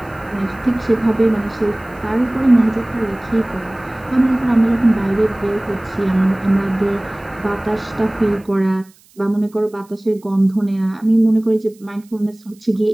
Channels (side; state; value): right; noise; hiss, 30 dB below the sound